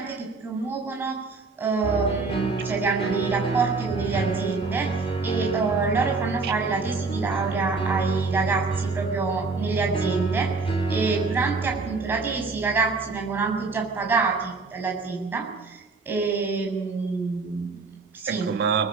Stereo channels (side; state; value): left; quieter; 4.1 dB